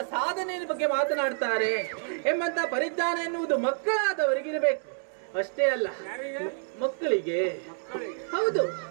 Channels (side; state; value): left; silent; 59 dB below the other